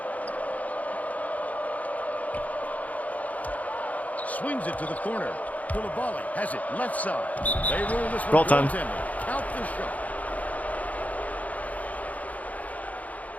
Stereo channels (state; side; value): late; right; 0.073 ms